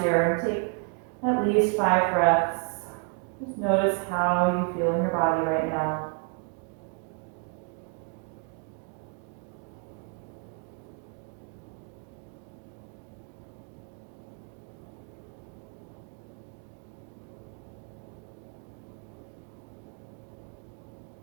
here and take at least 5 breaths. Just notice how you feel in your body right now.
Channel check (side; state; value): left; quieter; 36.4 dB